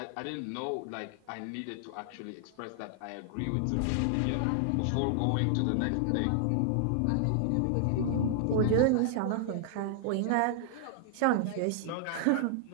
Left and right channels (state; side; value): different; both; correlation 0.00